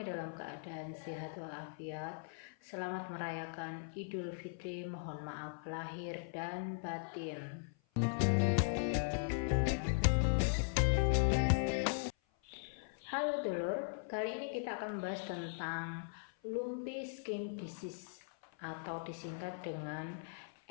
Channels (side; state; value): right; silent; 52 dB below the other